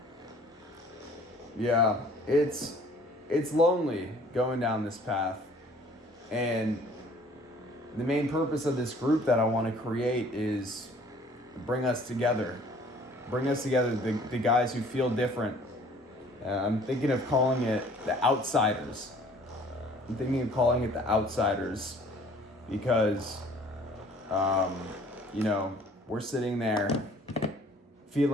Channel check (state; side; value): normal; both; correlation 0.54